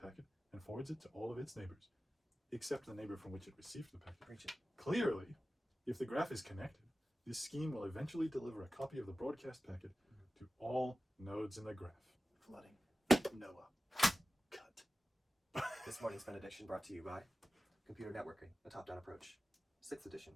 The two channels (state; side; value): normal; both; correlation 0.95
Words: and forwards it to all of its neighbors, except the neighbor from which it received the packet. Preach it. Clearly, if the graph is connected, this scheme will eventually deliver a copy of the broadcast packet to all nodes in the graph. Flooding. Noah. Cut. This morning's benediction brought to you by Computer Networking, a top-down approach. 6th edition